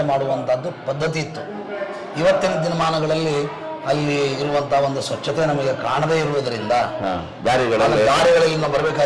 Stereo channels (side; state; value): both; identical; correlation 1.00